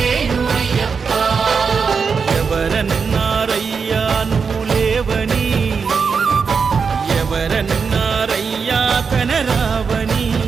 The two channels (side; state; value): left; quieter; 5.6 dB